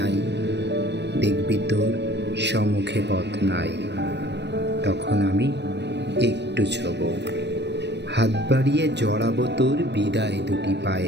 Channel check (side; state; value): left; late; 0.50 ms